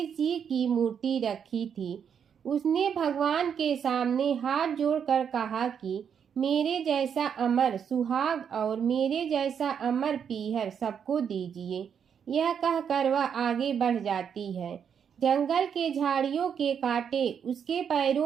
जी की मूर्ति रखी थी। उसने भगवान के सामने हाथ जोड़कर कहा कि मेरे जैसा अमर सुहाग और मेरे जैसा अमर पीहर सबको दीजिए। यह कहकर वह आगे बढ़ जाती है। जंगल के झाड़ियों के कांटे उसके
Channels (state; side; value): quieter; left; 7.7 dB